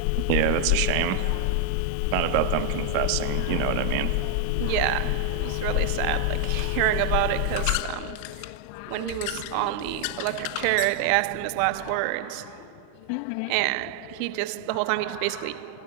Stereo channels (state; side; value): different; both; correlation 0.00